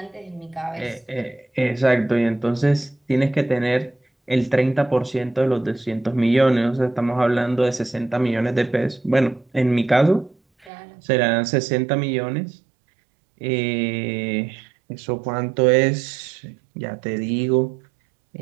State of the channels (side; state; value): left; drops out; at 10.7 s